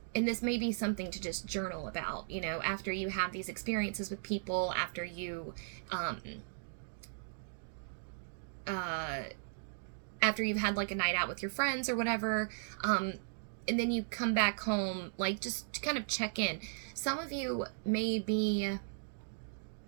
this may be something to just journal about, you know, after you have these experiences with people, after you've had like a night out with your friends or whatever, and then you come back home, like just to kind of check in. Some of you may be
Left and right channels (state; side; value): silent; left; digital silence